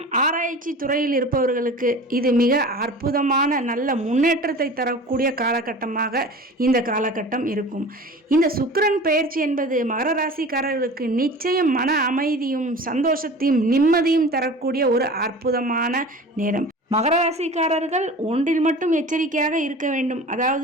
ஆராய்ச்சி துறையில் இருப்பவர்களுக்கு இது மிக அற்புதமான நல்ல முன்னேற்றத்தை தரக்கூடிய காலகட்டமாக இந்த காலகட்டம் இருக்கும். இந்த சுக்கிரன் பெயர்ச்சி என்பது மகர ராசிக்காரர்களுக்கு நிச்சயம் மன அமைதியும் சந்தோஷத்தையும் நிம்மதியும் தரக்கூடிய ஒரு அற்புதமான நேரம். மகர ராசிக்காரர்கள் ஒன்றில் மட்டும் எச்சரிக்கையாக இருக்க வேண்டும்.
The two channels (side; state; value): both; normal; correlation 0.38